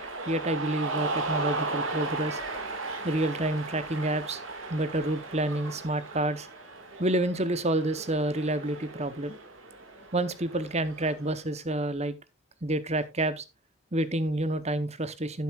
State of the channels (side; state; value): both; normal; correlation 0.38